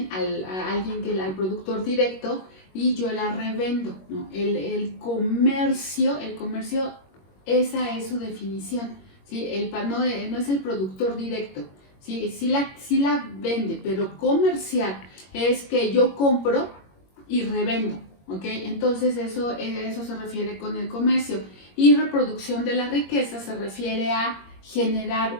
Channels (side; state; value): right; late; 21 ms